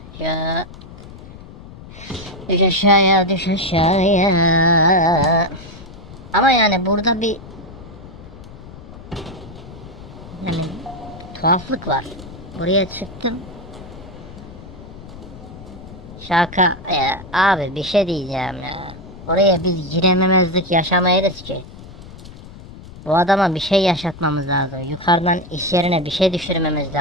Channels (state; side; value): noise; left; rumble, 16 dB below the sound